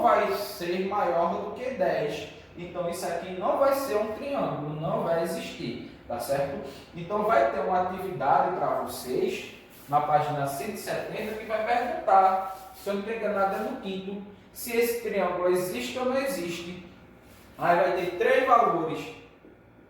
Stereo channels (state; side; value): identical; both; correlation 1.00